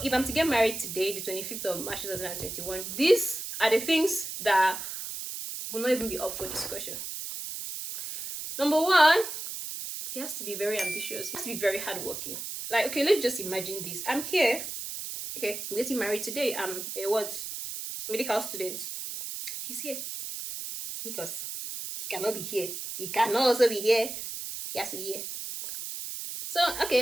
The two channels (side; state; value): right; noise; hiss, 7 dB below the sound